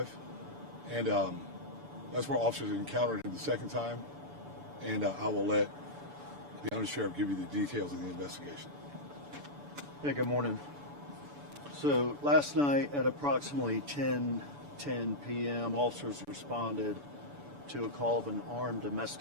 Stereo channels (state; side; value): late; left; 6.9 ms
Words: and that's where officers encountered him the second time. And I will let the Undersheriff give you the details of the investigation. Yeah, good morning. So last night at approximately 10:10 p.m., officers responded to a call of an armed